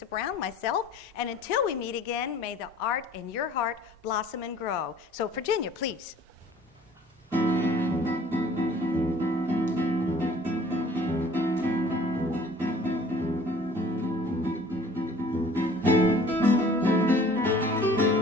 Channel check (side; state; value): both; normal; correlation 0.51